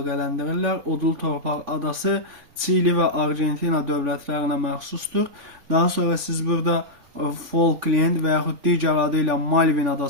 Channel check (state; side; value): late; left; 3.5 ms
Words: Odlu Torpaq adası Çili və Argentina dövlətlərinə məxsusdur. Daha sonra siz burada Falkland və yaxud digər adı ilə Malvin